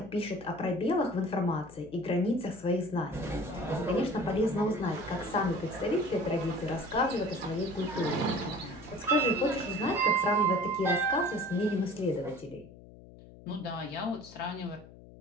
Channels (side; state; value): left; noise; hum, 19 dB below the sound